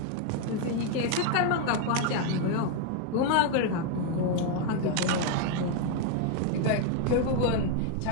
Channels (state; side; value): different; both; correlation 0.00